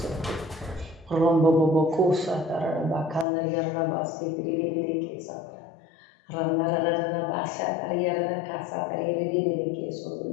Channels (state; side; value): drops out; right; at 3.2 s